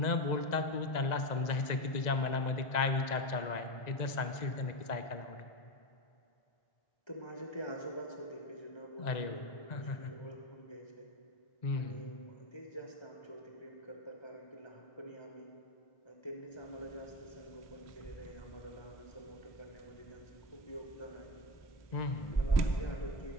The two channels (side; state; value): right; late; 1.9 ms